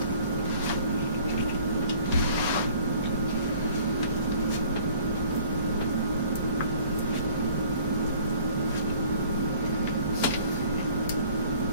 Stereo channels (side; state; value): both; inverted; correlation -0.54